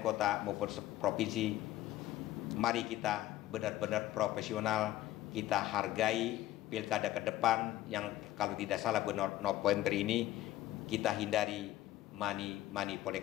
kota maupun provinsi, mari kita benar-benar profesional, kita hargai pilkada ke depan yang kalau tidak salah bulan November ini, kita hindari money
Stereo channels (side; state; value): right; quieter; 14.4 dB